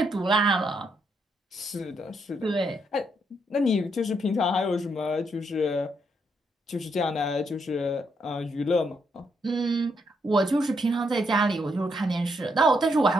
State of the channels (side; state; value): both; normal; correlation 0.77